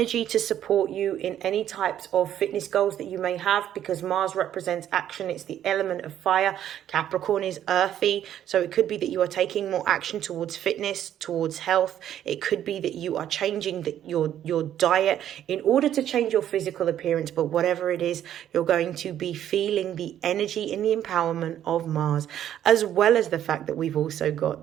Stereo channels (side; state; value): left; quieter; 10.9 dB